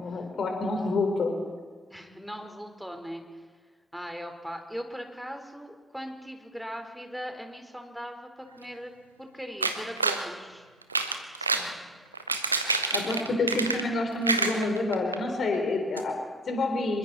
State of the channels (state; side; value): normal; both; correlation 0.33